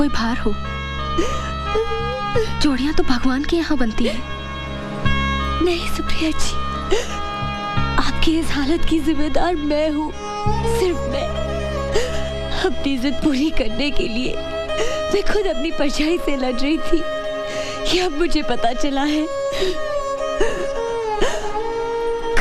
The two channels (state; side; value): identical; both; correlation 1.00